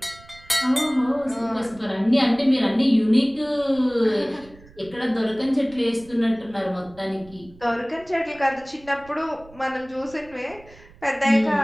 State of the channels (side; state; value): right; noise; rumble, 23 dB below the sound